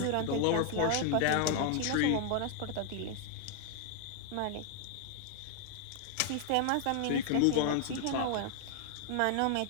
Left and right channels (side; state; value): both; different; correlation 0.00